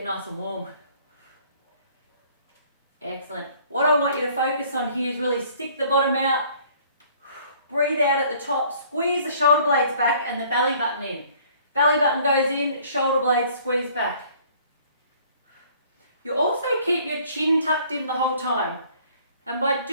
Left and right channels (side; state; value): both; inverted; correlation -0.56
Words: nice and warm. Excellent. What I want you to focus on here is really stick the bottom out. Breathe out at the top. Squeeze the shoulder blades back and the belly button in. Belly button goes in, shoulder blades squeeze back. You also keep your chin tucked in the whole time. And by